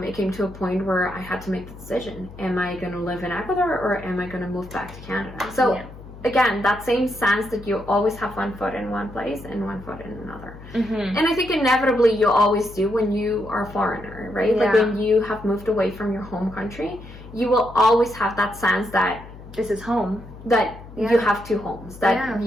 came to a point where I had to make the decision. Am I going to live in Ecuador or am I going to move back to Canada? So again, that same sense that you always have one foot in one place and one foot in another. And I think inevitably you always do when you are a foreigner, right? Yeah. Like when you have moved away from your home country, you will always have that sense that this is home. That you have two homes. That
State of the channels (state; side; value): noise; left; hum, 16 dB below the sound